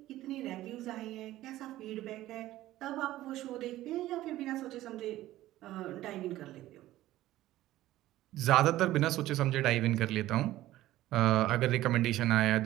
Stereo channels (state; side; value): quieter; left; 15.2 dB